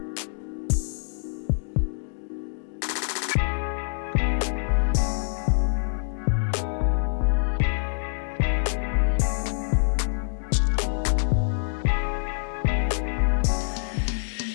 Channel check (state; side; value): silent; right; digital silence